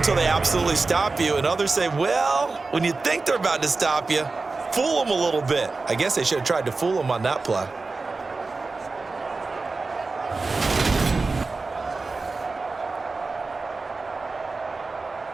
they absolutely stop you, and others say, well, when you think they're about to stop you, fool them a little bit. I guess they should have tried to fool them on that play.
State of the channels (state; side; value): quieter; left; 3.8 dB